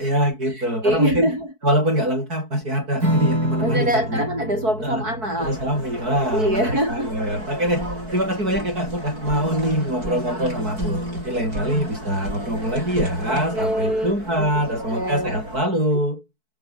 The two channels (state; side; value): late; left; 4.6 ms